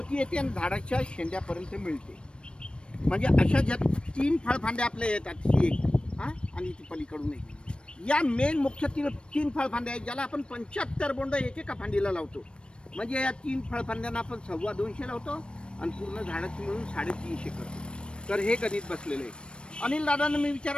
येते आणि झाडाच्या शेंड्यापर्यंत मिळते. म्हणजे अशा ज्या 3 फळफांद्या आपल्या येतात, ही एक, हां, आणि ती पलीकडून एक. या मेन मुख्य 3 फळफांद्या आहेत, ज्याला आपण 75 बोंड एकेका फांदीला लावतो. म्हणजे या 3 फळफांद्यांना आपण 250 लावतो आणि पूर्ण झाडाची मिळून 350 करतो. तर हे गणित बसलेलं आहे. अनिल दादांना मी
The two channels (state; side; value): late; right; 0.056 ms